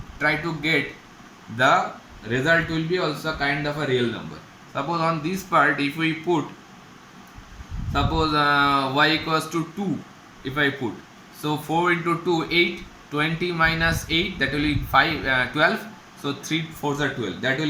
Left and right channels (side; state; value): both; identical; correlation 1.00